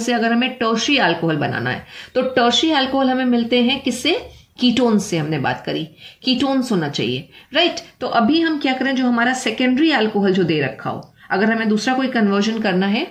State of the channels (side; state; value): both; identical; correlation 1.00